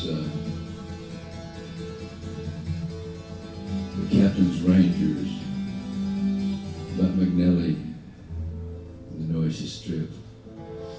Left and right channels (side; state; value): both; identical; correlation 1.00